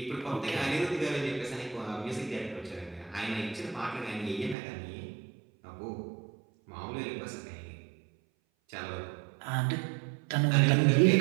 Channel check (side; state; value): left; drops out; at 4.5 s